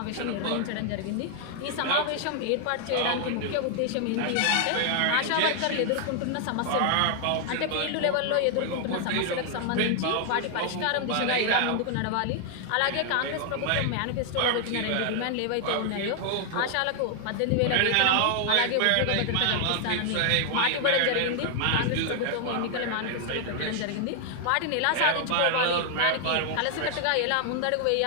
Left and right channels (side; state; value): both; different; correlation 0.00